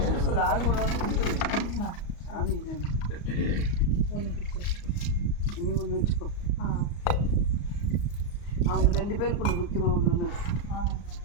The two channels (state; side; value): late; right; 35 ms